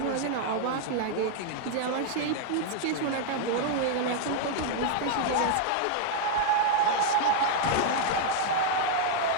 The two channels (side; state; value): both; different; correlation 0.00